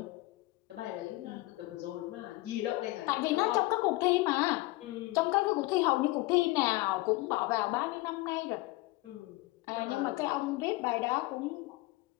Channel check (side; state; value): right; quieter; 20.9 dB